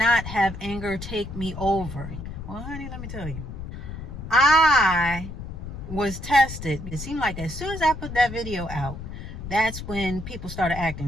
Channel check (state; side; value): noise; left; rumble, 9 dB below the sound